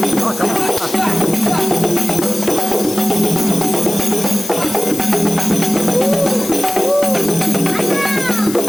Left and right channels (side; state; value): left; noise; hiss, 11 dB below the sound